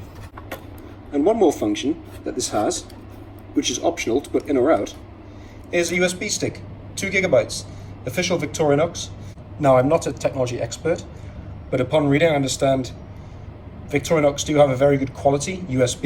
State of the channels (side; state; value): both; identical; correlation 1.00